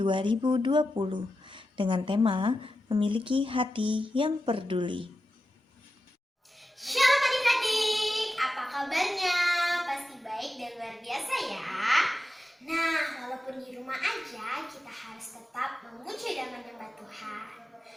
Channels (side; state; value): both; normal; correlation 0.91